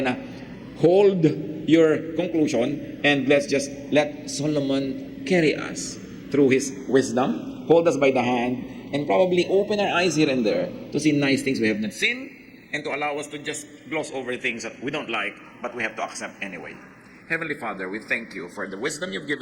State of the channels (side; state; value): both; identical; correlation 1.00